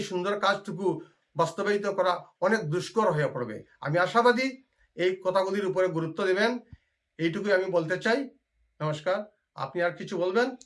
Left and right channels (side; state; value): both; identical; correlation 1.00